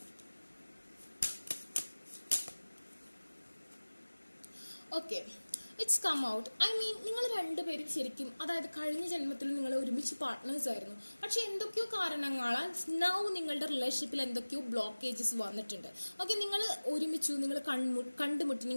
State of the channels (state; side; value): inverted; both; correlation -1.00